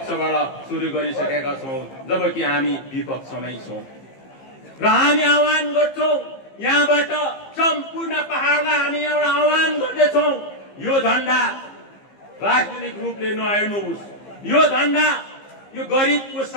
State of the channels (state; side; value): late; right; 15 ms